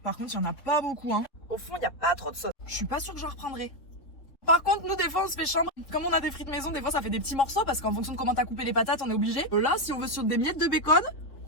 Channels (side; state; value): right; late; 3.9 ms